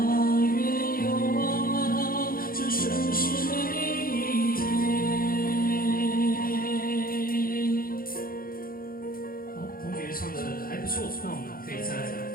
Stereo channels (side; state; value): right; late; 0.42 ms